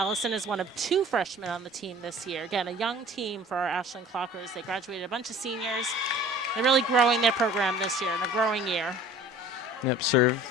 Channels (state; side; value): normal; both; correlation 0.47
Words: is one of 2 freshmen on the team this year. Again, a young team for our Ashland Clockers. They graduated a bunch of seniors. They're really growing their program this year, in a growing year. Yep, serve